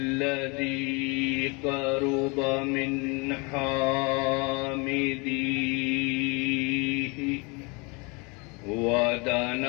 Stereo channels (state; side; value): quieter; right; 29.5 dB